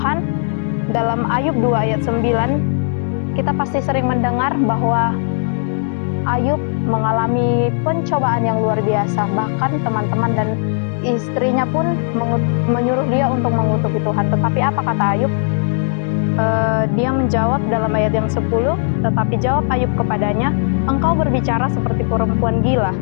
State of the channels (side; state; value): right; silent; 68 dB below the other